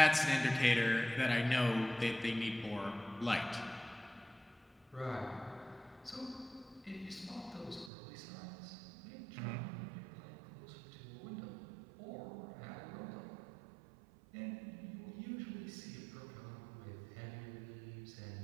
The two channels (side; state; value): left; drops out; at 7.9 s